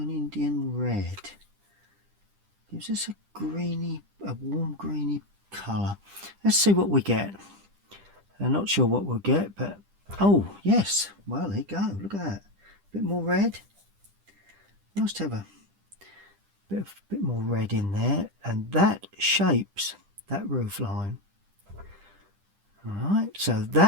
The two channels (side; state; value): left; late; 10 ms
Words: Indian red. Gives us a warm greeny colour. Let's see what we get. I'm not sure what we'll get, but oh yes, well there you go. Look at that. A bit more red. Nice to have a bit more red in there, and that shapes that roof line. Alright, so